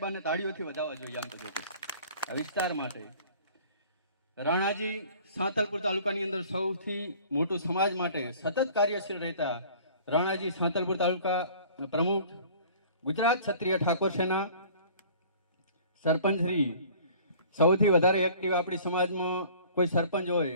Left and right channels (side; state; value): both; inverted; correlation -0.49